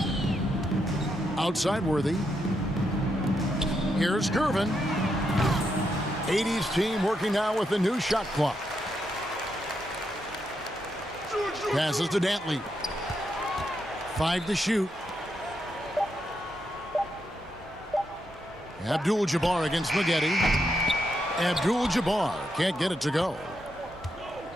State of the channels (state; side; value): normal; both; correlation 0.81